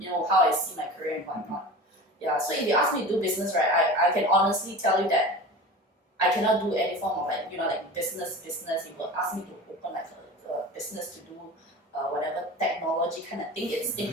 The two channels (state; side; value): normal; both; correlation 0.34